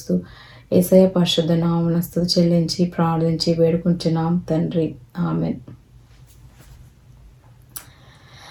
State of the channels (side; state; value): both; identical; correlation 1.00